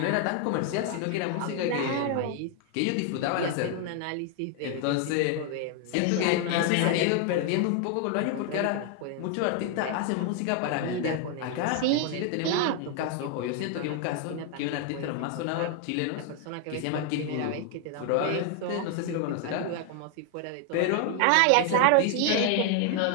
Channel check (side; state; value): both; different; correlation 0.00